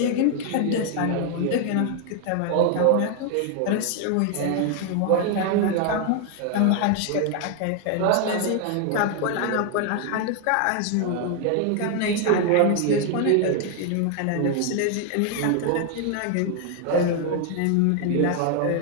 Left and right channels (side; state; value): both; different; correlation 0.00